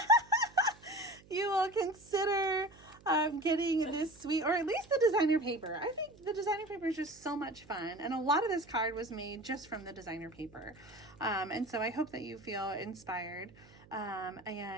you will consider getting this suite, or at least the designer paper. I think the designer paper is just so much fun, and a lot of this card was made just from the designer paper. And so I hope that you feel inspired.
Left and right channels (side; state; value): right; noise; hum, 24 dB below the sound